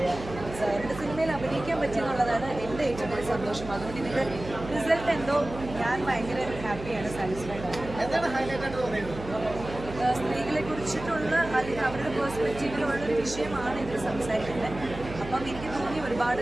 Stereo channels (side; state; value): right; noise; hum, 12 dB below the sound